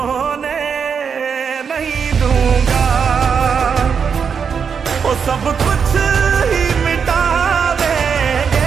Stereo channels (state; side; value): quieter; left; 6.5 dB